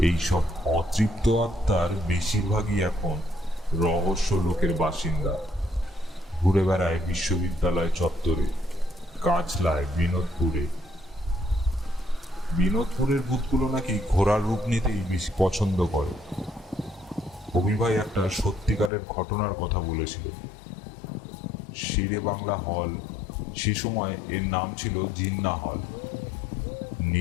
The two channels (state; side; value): drops out; right; at 18.9 s